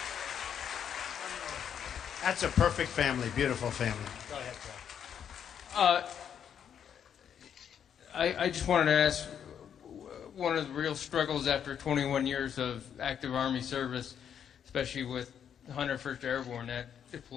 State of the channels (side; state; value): right; quieter; 8.5 dB